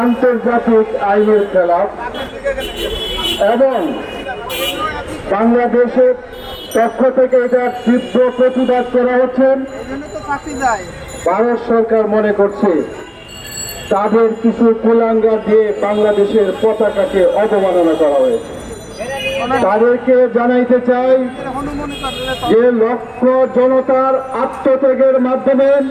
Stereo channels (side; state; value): both; identical; correlation 1.00